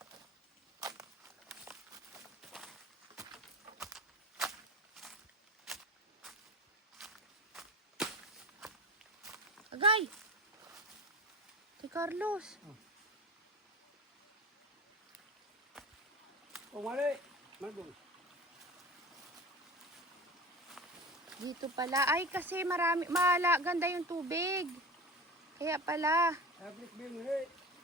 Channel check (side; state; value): both; normal; correlation 0.32